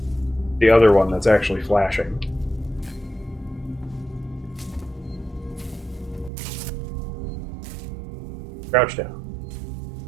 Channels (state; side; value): drops out; left; at 6.3 s